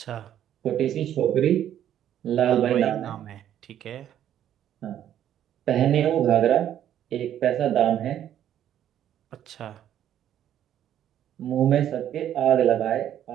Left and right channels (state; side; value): quieter; left; 10.8 dB